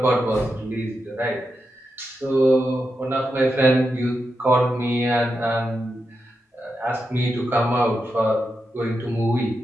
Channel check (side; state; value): both; normal; correlation 0.87